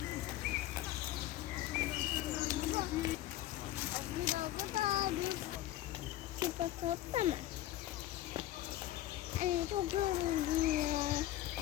Topla mı? Çok yoruldum ya.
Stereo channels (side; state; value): right; quieter; 14.5 dB